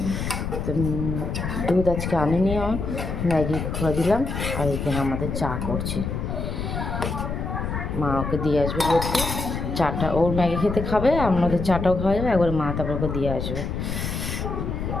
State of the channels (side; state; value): left; noise; rumble, 3 dB below the sound